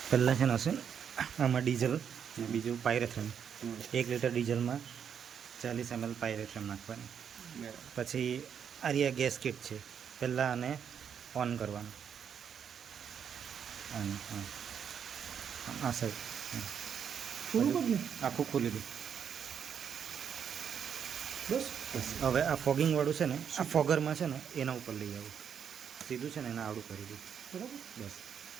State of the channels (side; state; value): left; quieter; 7.9 dB